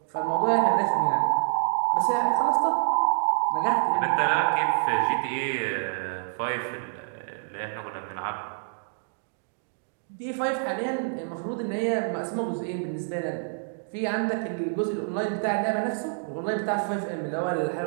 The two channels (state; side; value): silent; left; digital silence